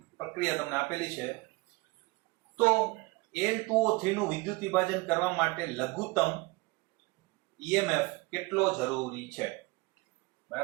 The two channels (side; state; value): left; quieter; 24.2 dB